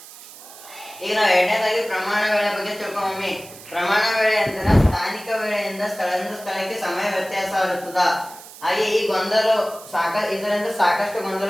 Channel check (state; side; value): noise; right; hiss, 18 dB below the sound